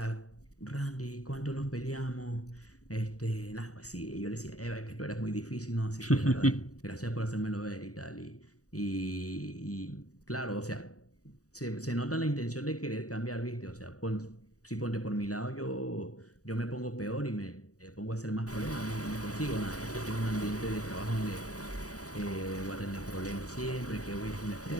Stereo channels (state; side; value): late; right; 0.66 ms